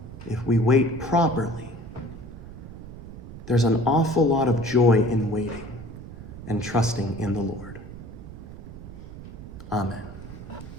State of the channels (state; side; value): noise; right; rumble, 13 dB below the sound